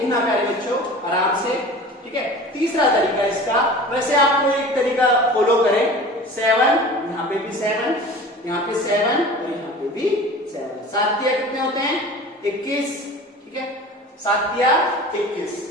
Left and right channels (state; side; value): normal; both; correlation 0.39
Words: प्यारे बच्चों आराम से, ठीक है। तीसरा तरीका इसका, वैसे आपको एक तरीका फॉलो करें, 7, यहाँ पे भी 7, यहाँ पे 7 और यहाँ पे भी 7। 7 तिया कितने होते हैं 21, ठीक है। 7 तिया 21।